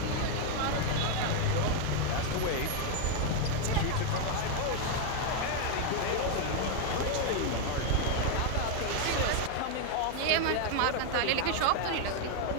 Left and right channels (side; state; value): both; different; correlation 0.00